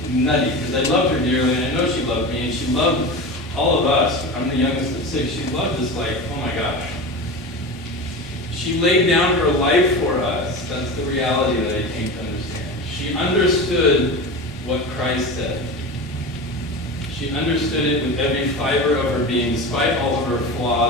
nutty, because I loved her dearly, and I know she loved me, and she loved all of us. I'm the youngest of 6. She loved us like, oh my gosh. She laid down her life for us. That's the reality that I came to understand. She understood what Christ said. She understood it with every fiber of her being, despite all of her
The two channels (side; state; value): both; normal; correlation 0.27